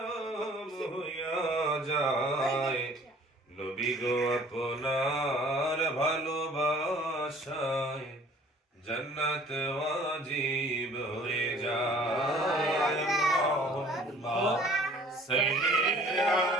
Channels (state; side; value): normal; both; correlation 0.52